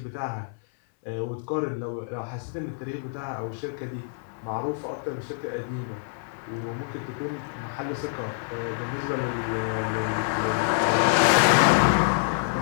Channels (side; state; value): right; silent; 60 dB below the other